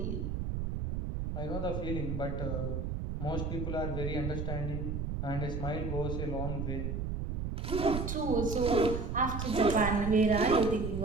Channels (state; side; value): noise; right; rumble, 2 dB below the sound